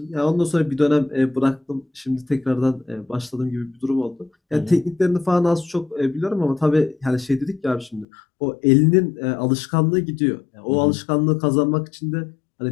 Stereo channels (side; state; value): right; drops out; at 8.1 s